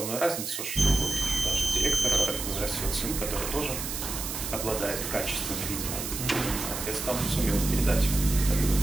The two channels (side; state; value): right; noise; hiss, 5 dB below the sound